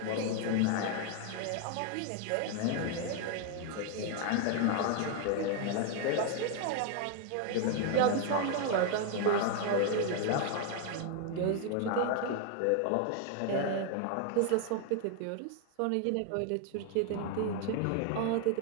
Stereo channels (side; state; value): both; different; correlation 0.00